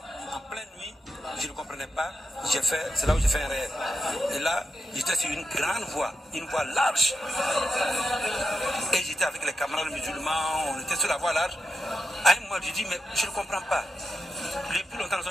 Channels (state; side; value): normal; both; correlation 0.86